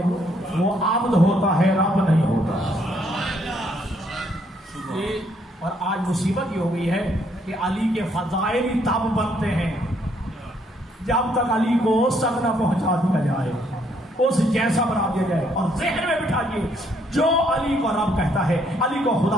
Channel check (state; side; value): normal; both; correlation 0.69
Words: وہ عابد ہوتا ہے، رب نہیں ہوتا. اور آج مصیبت یہ ہو گئی ہے کہ علی کے فضائل ہی تب بنتے ہیں جب تک علی کو سب نہ پہنچا دیا جائے، اس جیسا بنا دیا جائے. اور ذہن میں بٹھائیے جو علی کو رب کہتا ہے، علی کو